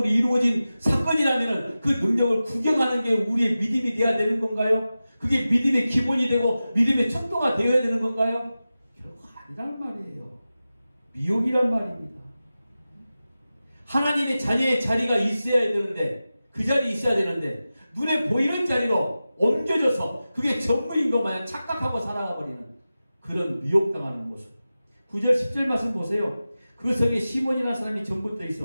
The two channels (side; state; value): both; inverted; correlation -0.94